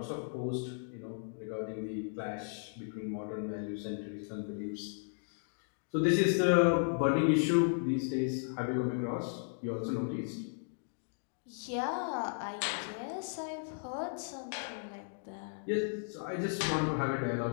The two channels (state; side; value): silent; right; digital silence